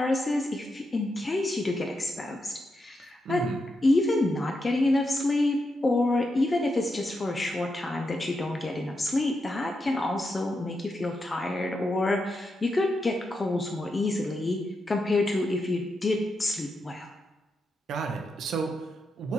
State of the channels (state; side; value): normal; both; correlation 0.85